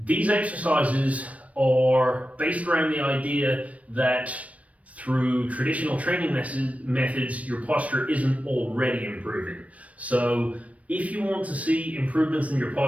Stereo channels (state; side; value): late; left; 0.066 ms